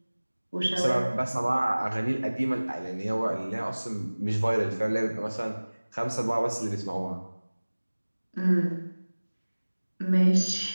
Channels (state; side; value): inverted; both; correlation -1.00